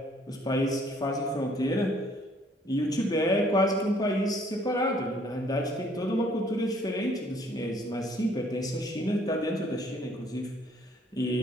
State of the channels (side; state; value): both; normal; correlation 0.61